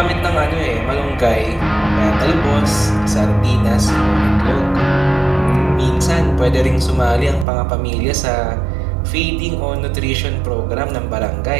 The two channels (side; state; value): left; drops out; at 7.5 s